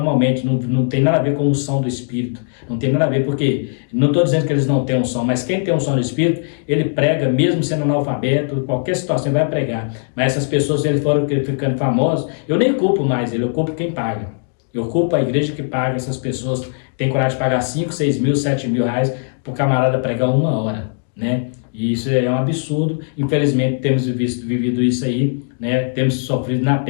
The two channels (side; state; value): right; silent; 63 dB below the other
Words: não tem nada a ver com a unção do Espírito, não tem nada a ver, porque não estou dizendo que eles não têm unção, mas quem tem unção do Espírito, ele prega, mesmo sendo analfabeto, qualquer situação vai pregar. Mas essas pessoas, se eles foram ficando famosos, eu nem culpo mais ele, eu culpo quem paga. Eu culpo a igreja que paga essas pessoas, tem coragem de pagar 5, 6 mil, 7 mil reais para o camarada pregar 1 hora, né? E isso é um absurdo. Infelizmente temos vivido isso aí, né? Temos sofrido na